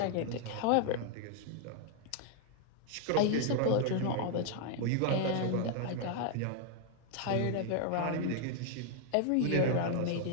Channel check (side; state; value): both; different; correlation 0.00